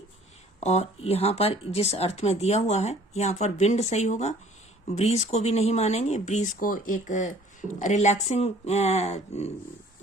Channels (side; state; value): both; normal; correlation 0.53